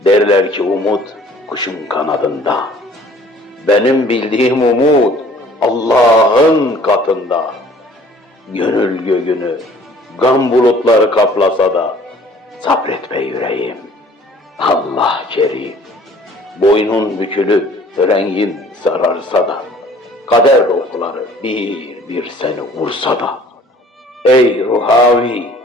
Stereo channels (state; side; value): normal; both; correlation 0.53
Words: Derler ki umut kuşun kanadında, benim bildiğim umut Allah'ın katında. Gönül göğünü gam bulutları kaplasa da, sabret be yüreğim, Allah kerim. Boynun bükülüp rengin sararsa da, kader okları bir bir seni vursa da, ey ruhavi,